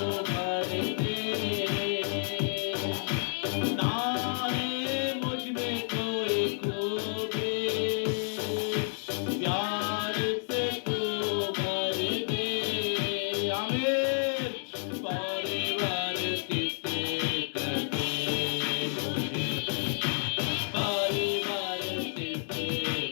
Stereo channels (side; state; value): right; silent; digital silence